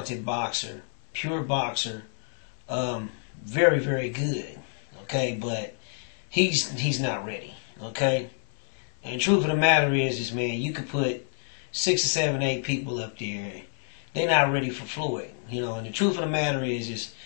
boxer, pure boxer, very, very good. Okay, but he's not ready. Okay, and the truth of the matter is man, you could put 6 or 7, 8 people up there, they're not ready for Floyd. And the truth of the matter is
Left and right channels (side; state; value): right; silent; digital silence